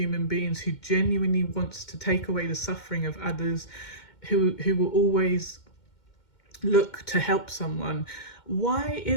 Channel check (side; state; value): right; late; 2.1 ms